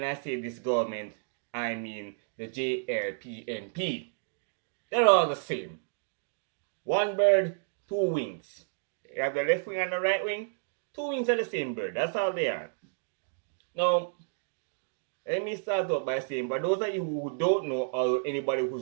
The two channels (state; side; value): silent; left; digital silence